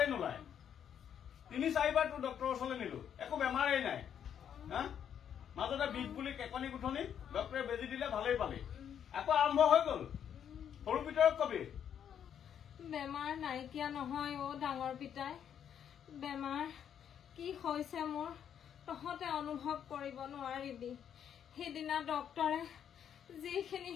নোলায় ৩-৪বাৰ তোৰ ডক্টৰৰ ওচৰলৈ নিলো একো বেমাৰেই নাই হা মাজতে বিষ বুলি কেকনি গুঠনি ডক্টৰে বেজি দিলে ভালেই পালি আকৌ আৰম্ভ হৈ গ'ল সৰু ভিতৰত কবি বেমাৰ নাইকিয়া নহয় ডাঙৰ পিতাই বেমাৰ কি হৈছে মোৰ তহঁতে অনুভৱ কৰিব নোৱাৰিবি সেইদিনা ডক্টৰে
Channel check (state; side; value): quieter; right; 8.9 dB